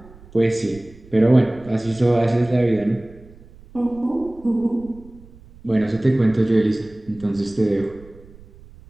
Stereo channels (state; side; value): noise; right; rumble, 22 dB below the sound